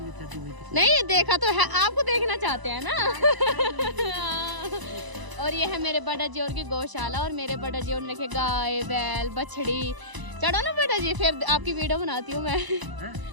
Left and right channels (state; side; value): late; left; 1.0 ms